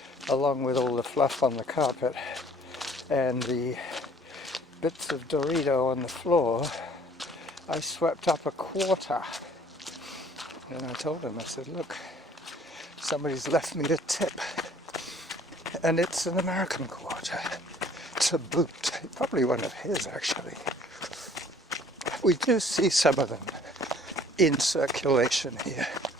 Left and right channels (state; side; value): normal; both; correlation 0.55